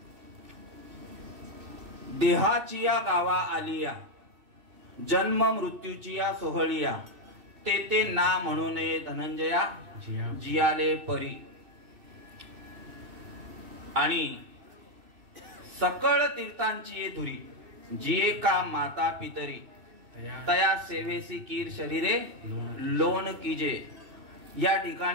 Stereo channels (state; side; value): late; left; 2.6 ms